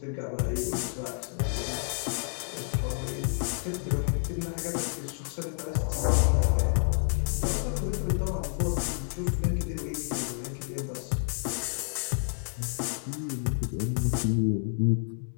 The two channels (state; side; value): silent; right; digital silence